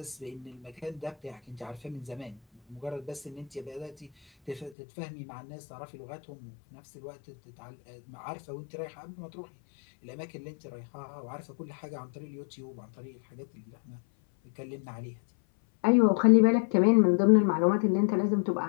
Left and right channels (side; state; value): right; drops out; at 4.8 s